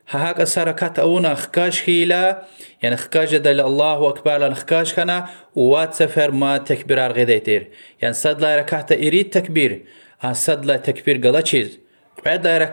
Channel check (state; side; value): inverted; both; correlation -1.00